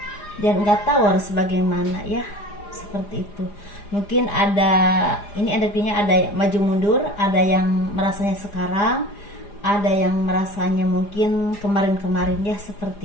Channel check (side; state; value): right; late; 4.9 ms